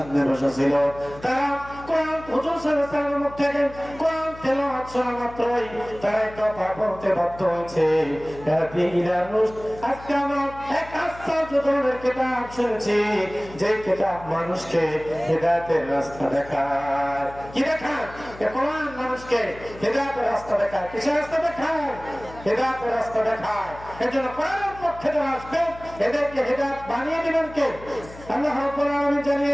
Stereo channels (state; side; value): noise; left; hum, 17 dB below the sound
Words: বসা ছিল। তারা কোরআন হুজুর সাল্লাল্লাহু আলাইহি ওয়াসাল্লামের মুখ থেকে কোরআন তেলাওয়াত শোনা মাত্রই তারা কথা বলতে বাধ্য হয়েছে, আজকে আমরা এক আশ্চর্য ধরনের কিতাব শুনেছি, যে কিতাব মানুষকে হিদায়াতের রাস্তা দেখায়। কি দেখায়? কোরআন মানুষকে হিদায়াতের রাস্তা দেখায়। কিসের রাস্তা দেখায়? হিদায়াতের রাস্তা দেখায়। এজন্য কোরআনের পক্ষে যারা আসবে এদেরকে হিদায়াত বানিয়ে দিবেন কে? আল্লাহ রাব্বুল আলামিন জানিয়ে